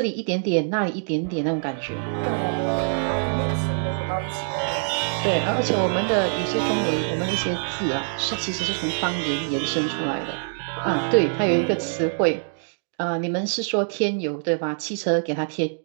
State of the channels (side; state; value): left; silent; digital silence